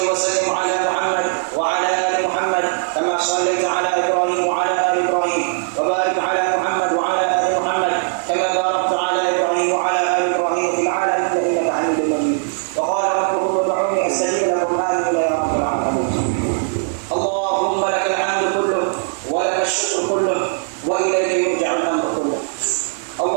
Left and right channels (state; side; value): silent; left; 66 dB below the other